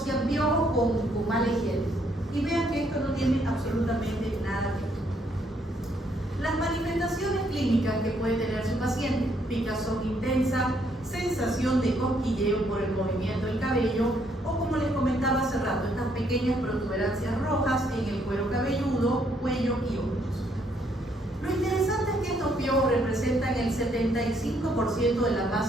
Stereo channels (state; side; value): normal; both; correlation 0.70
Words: piojos con mala higiene. Y vean que esto no tiene absolutamente nada que ver. Las manifestaciones clínicas que puede tener su paciente: picazón intensa, sensación de cosquilleo por el movimiento del cabello, o como les comentaba hace rato, estas pequeñas protuberancias rojas en el cuero cabelludo, cuello y hombros. Lo interesante es que estos piojos representan el 75% de la